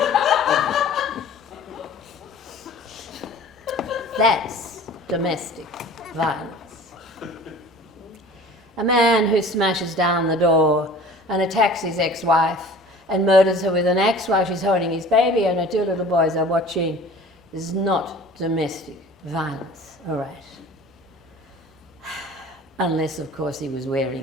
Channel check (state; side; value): normal; both; correlation 0.44